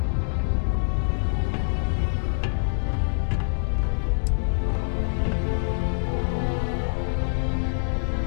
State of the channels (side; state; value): right; silent; digital silence